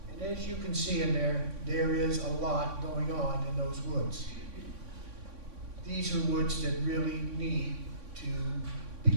and as you can see in there, there is a lot going on in those woods. These are woods that really need to be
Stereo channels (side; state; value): left; late; 3.6 ms